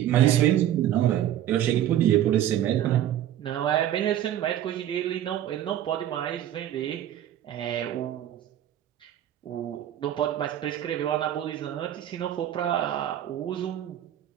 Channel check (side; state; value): left; quieter; 11.6 dB